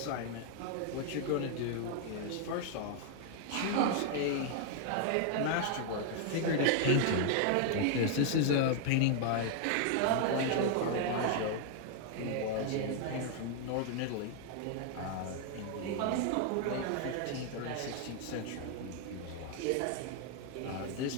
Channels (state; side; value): different; both; correlation 0.00